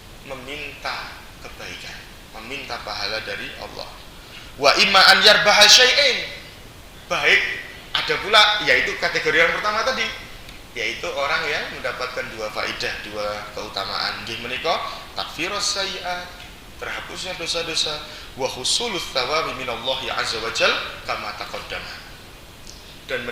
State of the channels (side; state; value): both; identical; correlation 1.00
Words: meminta kebaikan, meminta pahala dari Allah. Wa imma an yarbaha syai'in, baik ada pula yaitu kategori yang pertama tadi, yaitu orang yang mendapatkan dua faidah, dua keutamaan. Nggih menika takfirus sayyi'at, terhapusnya dosa-dosa, wa husulus tsawabi minallahi azza wajal kama taqaddama, dan